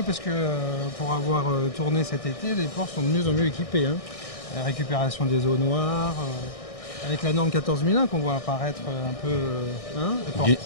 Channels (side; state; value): right; late; 1.6 ms